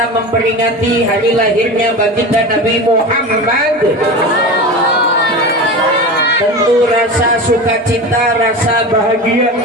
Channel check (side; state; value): both; normal; correlation 0.28